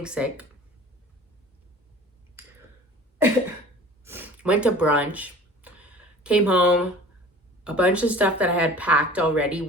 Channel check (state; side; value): normal; both; correlation 0.45